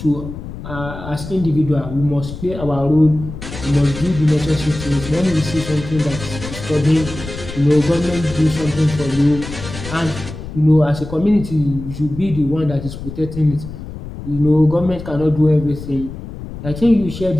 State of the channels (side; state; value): left; noise; rumble, 11 dB below the sound